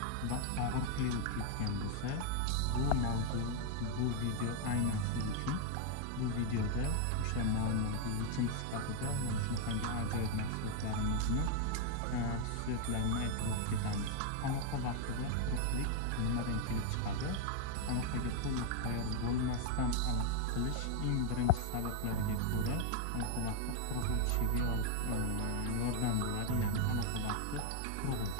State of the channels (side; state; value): both; different; correlation 0.00